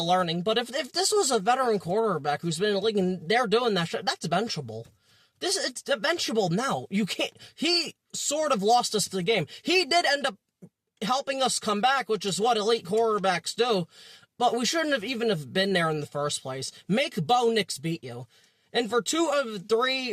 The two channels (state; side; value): identical; both; correlation 1.00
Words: learning, but if this was a veteran quarterback who's been in the league and they're doing that shit, that's benchable. It's benchable now. You can't, he sort of lost us the game. He did end up helping us come back, which is what elite quarterbacks do, but we shouldn't have even have been there in the first place. Make Bo Nix beat you. And for 2 of